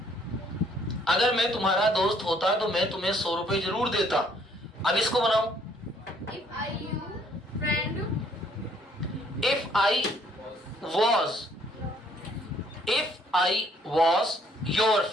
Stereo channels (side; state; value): both; normal; correlation 0.64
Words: अगर मैं तुम्हारा दोस्त होता तो मैं तुम्हें 100 रुपए जरूर देता। अब इसको बनाओ, if I you friend, if I was, if I was your